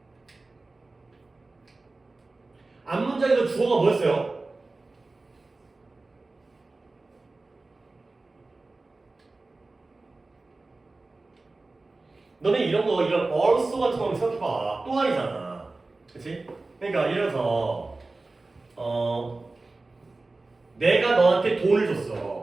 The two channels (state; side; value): quieter; left; 3.3 dB